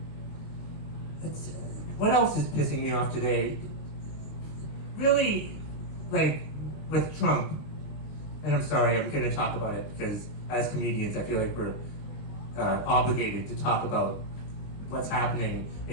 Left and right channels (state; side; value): late; right; 20 ms